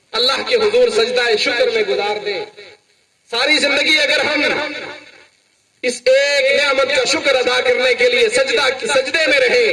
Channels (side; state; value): both; identical; correlation 1.00